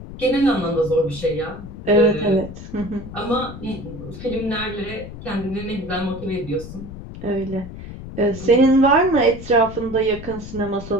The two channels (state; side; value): noise; left; rumble, 12 dB below the sound